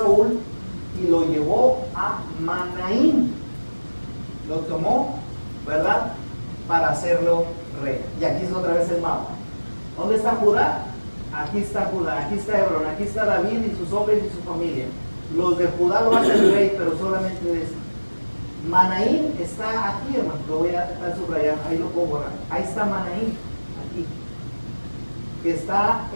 y lo llevó a Manaín. Lo tomó, ¿verdad?, para hacerlo rey. Y aquí es otra vez el mapa. ¿Dónde está Judá? Aquí está Judá, aquí está Hebrón, aquí está David y sus hombres y su familia. Los de Judá lo hacen rey, pero solamente de esto. Manaín está aquí, hermano, lo voy a estar subrayando, ahí lo puedo borrar. Ahí está Manaín, aquí, que está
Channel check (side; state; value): both; inverted; correlation -1.00